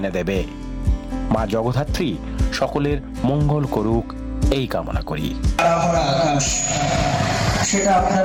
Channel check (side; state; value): both; identical; correlation 1.00